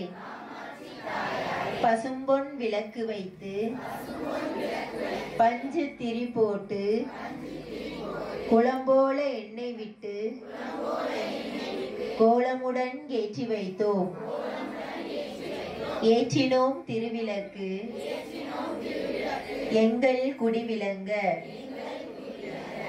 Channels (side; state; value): both; identical; correlation 1.00